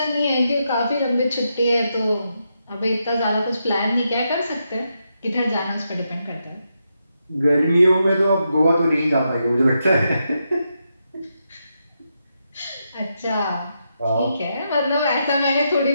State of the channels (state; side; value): inverted; both; correlation -0.83